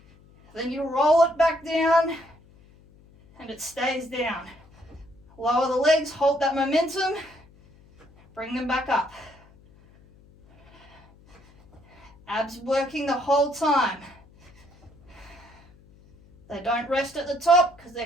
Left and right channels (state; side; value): noise; left; hum, 27 dB below the sound